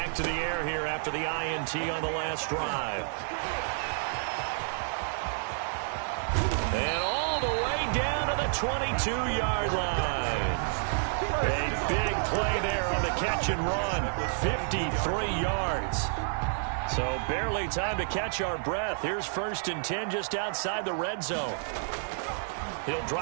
to the air here after the INT on the last drive. And all the way down to the 22-yard line. A big play there on the catch and run. 53 yards. So barely time to catch our breath. Here's 1st and 10 just outside the red zone. He'll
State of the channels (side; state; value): left; silent; digital silence